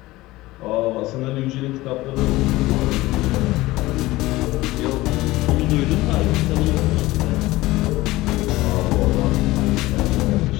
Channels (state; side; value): quieter; right; 18.7 dB